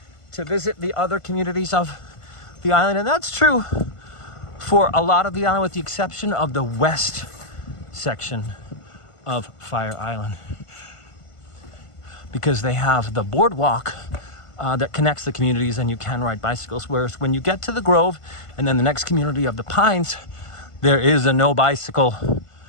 to visit the other communities of the island. And that's true for a lot of the island, with the exception of the west section of Fire Island, because they have the boardwalk that connects the communities and you can ride bicycles. Whereas when you get to the Grove and then the next community of the Pines, there is a no bicycle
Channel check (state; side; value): late; right; 1.5 ms